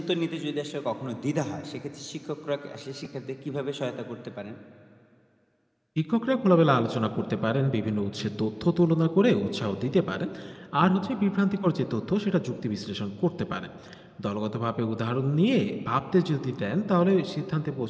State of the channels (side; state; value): both; identical; correlation 1.00